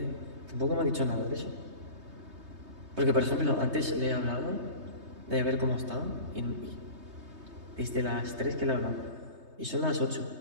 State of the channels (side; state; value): left; late; 3.2 ms